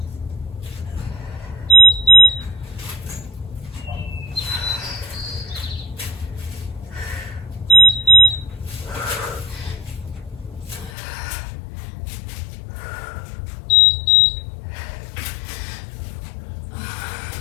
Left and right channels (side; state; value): right; drops out; at 10.9 s